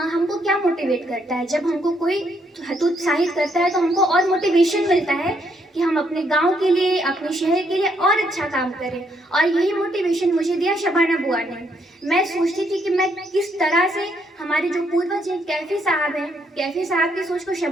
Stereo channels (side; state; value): both; normal; correlation 0.73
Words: क्या मोटिवेट करता है, जब हमको कोई हतोत्साहित करता है तो हमको और मोटिवेशन मिलता है कि हम अपने गांव के लिए, अपने शहर के लिए और अच्छा काम करें। और यही मोटिवेशन मुझे दिया शबाना बुआ ने। मैं सोचती थी कि मैं किस तरह से हमारे जो पूर्वज हैं, कैफी साहब हैं, कैफी साहब की सोच को